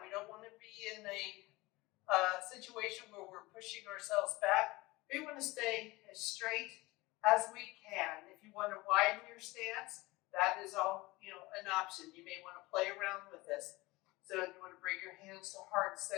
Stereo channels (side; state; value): right; quieter; 21.3 dB